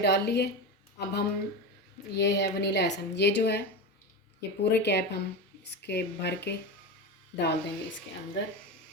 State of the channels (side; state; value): both; normal; correlation 0.21